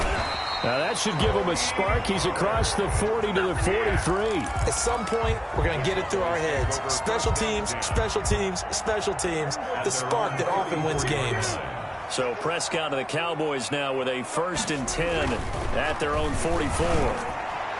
Now that should give him a spark. He's across the 40 to the 43. At some point, we're going to get it through our heads. Special teams, special teams, special teams. The spark that often wins games. So Prescott and the Cowboys now with a 1st and 10 at their own 44.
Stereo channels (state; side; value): identical; both; correlation 1.00